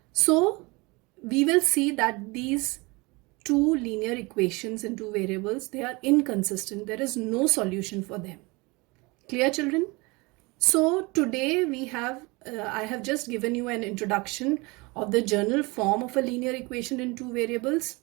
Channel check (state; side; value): quieter; left; 25.5 dB